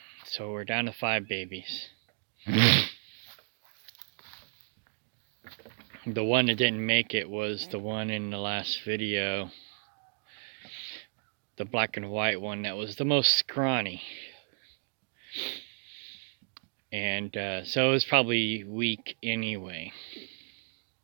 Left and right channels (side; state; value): left; silent; digital silence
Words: So we're down to 5 babies. The one that didn't make it was the one in the last video. The black and white one that was the most scrawny. And so it was probably weak anyway.